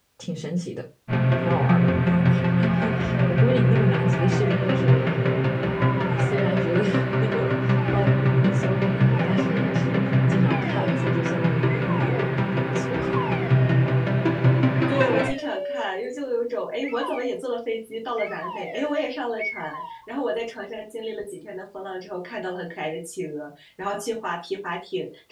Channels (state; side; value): identical; both; correlation 1.00